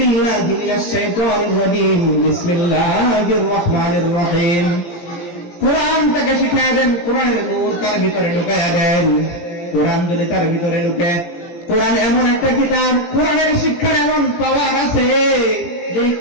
মিনাশ শাইতানির রাজীম বিসমিল্লাহির রহমানির রহিম কোরআন তাকে শিখাইয়া দেন, কোরআনের নূর তার ভিতরে ঢুকাইয়া দেন। কোরআন যদি তার ভিতরে ঢুকে, কোরআন এমন একটা কিতাব, কোরআনের শিক্ষার এমন পাওয়ার আছে যে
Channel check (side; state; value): right; late; 17 ms